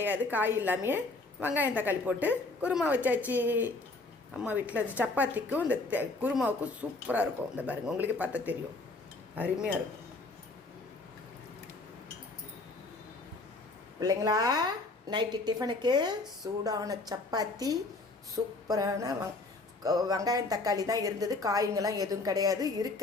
காய் இல்லாமையே வெங்காயம் தக்காளி போட்டு குருமா வச்சாச்சு. அம்மா வீட்டில் அது சப்பாத்திக்கும் இந்த குருமாவுக்கும் சூப்பராக இருக்கும். இந்த பாருங்கள், உங்களுக்கு பார்த்தா தெரியும், அருமையாக இருக்கும். பிள்ளைங்களா, நைட்டு டிஃபனுக்கு சூடான சப்பாத்தி, சூப்பரான வெங்காயம் தக்காளி தான் இருந்தது, காய்ங்கெல்லாம் எதுவும் கிடையாது.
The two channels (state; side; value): quieter; right; 3.3 dB